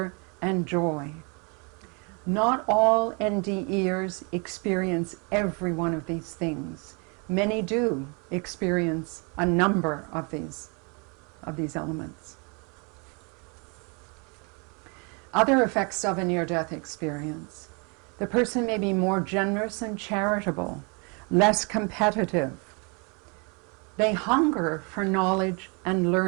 and joy. Not all NDEers experience every one of these things. Many do experience a number of these elements. Other effects of a near-death experience. The person may be more generous and charitable, less competitive. They hunger for knowledge and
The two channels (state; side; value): quieter; left; 33.3 dB